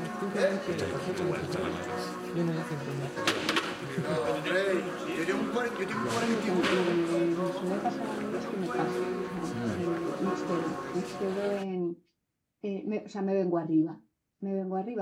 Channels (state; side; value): identical; both; correlation 1.00